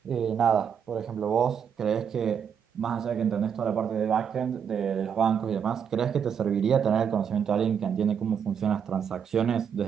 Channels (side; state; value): left; quieter; 7.6 dB